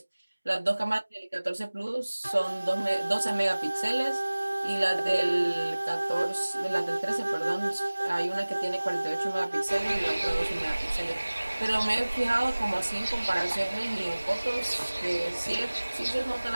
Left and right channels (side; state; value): both; inverted; correlation -1.00